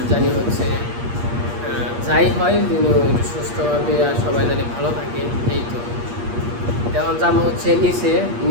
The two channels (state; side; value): late; left; 8.5 ms